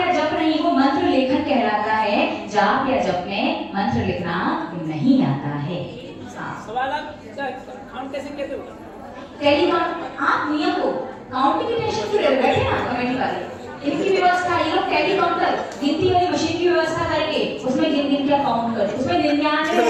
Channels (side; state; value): both; identical; correlation 1.00